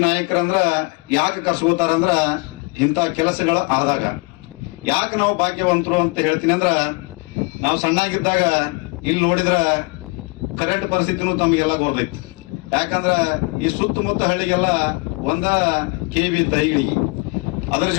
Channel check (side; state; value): right; quieter; 28.8 dB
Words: ನಾಯಕರಂದ್ರ ಯಾಕೆ ಕರ್ಸ್ಕೋತಾರಂದ್ರ ಇಂಥ ಕೆಲಸಗಳ ಆದಾಗ. ಯಾಕೆ ನಾವು ಭಾಗ್ಯವಂತರು ಅಂತ ಹೇಳ್ತೀನಿ ಅಂದ್ರ, ನಾವು ಸಣ್ಣಾಗಿದ್ದಾಗ ಇಲ್ಲಿ ನೋಡಿದ್ರ ಕರೆಂಟ್ ಪರಿಸ್ಥಿತಿನೂ ತಮಗೆಲ್ಲ ಗೊತ್ತೈತಿ. ಯಾಕಂದ್ರ ಈ ಸುತ್ತಮುತ್ತ ಹಳ್ಳಿಗೆಲ್ಲ ಒಂದ KV ದೈಗಳಿಗೆ, ಅದ್ರ